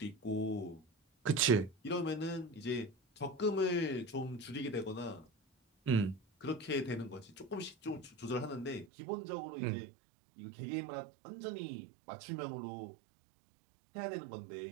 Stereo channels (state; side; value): drops out; left; at 8.8 s